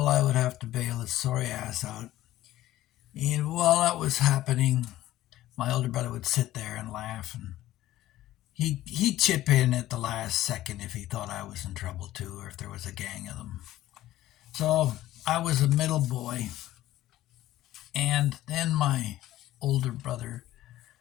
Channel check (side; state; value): right; quieter; 14.8 dB